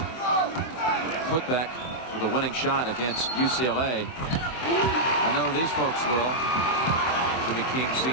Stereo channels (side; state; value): right; late; 23 ms